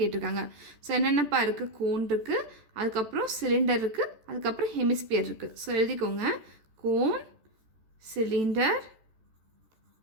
ஸோ என்னென்னப்பா இருக்குது, கோன் இருக்குது, அதுக்கப்புறம் சிலிண்டர் இருக்குது, அதுக்கப்புறம் ஹெமிஸ்பியர் இருக்குது. ஸோ எழுதிக்கோங்க, cone, cylinder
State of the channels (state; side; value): late; left; 14 ms